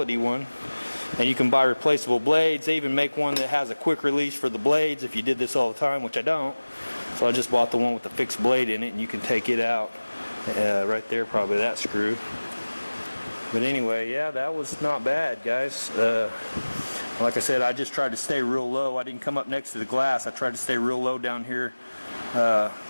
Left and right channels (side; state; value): both; inverted; correlation -1.00